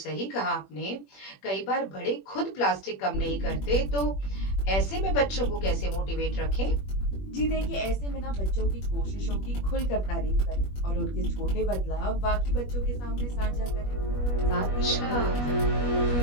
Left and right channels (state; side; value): late; right; 21 ms